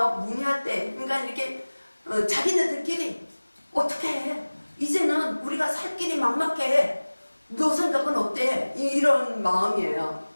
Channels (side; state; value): both; inverted; correlation -1.00